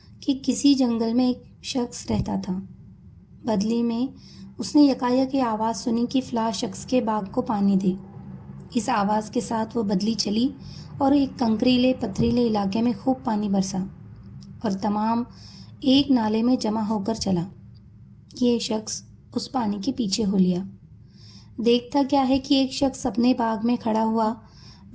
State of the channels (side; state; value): both; identical; correlation 1.00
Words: کہ کسی جنگل میں ایک شخص رہتا تھا۔ بدلی میں اس نے یکایک یہ آواز سنی کہ فلاں شخص کے باغ کو پانی دے۔ اس آواز کے ساتھ وہ بدلی چلی اور ایک کنکریلے پتھریلے علاقے میں خوب پانی برسا اور تمام ایک نالے میں جمع ہو کر چلا۔ یہ شخص اس پانی کے پیچھے ہو لیا۔ دیکھتا کیا ہے کہ ایک شخص اپنے باغ میں کھڑا ہوا